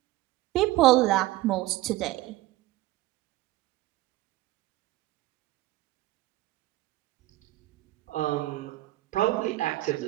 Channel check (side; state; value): left; quieter; 17.1 dB